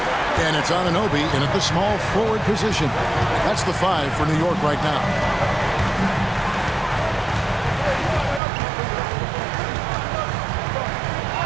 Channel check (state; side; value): drops out; left; at 8.4 s